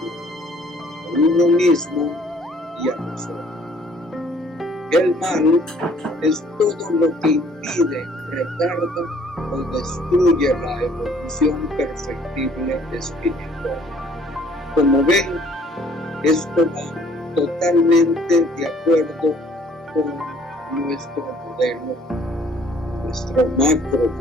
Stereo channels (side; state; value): both; normal; correlation 0.59